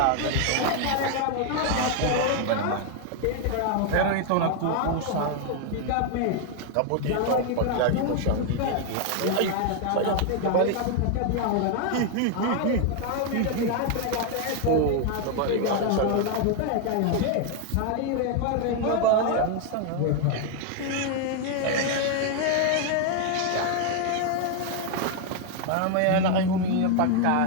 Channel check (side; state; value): both; different; correlation 0.01